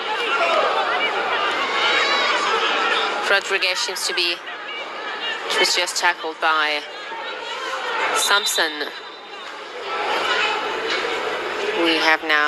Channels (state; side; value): identical; both; correlation 1.00